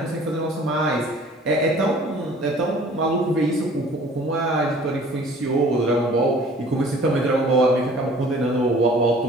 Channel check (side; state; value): both; normal; correlation 0.51